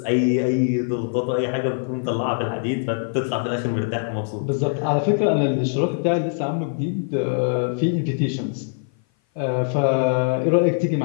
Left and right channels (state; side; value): silent; right; 57 dB below the other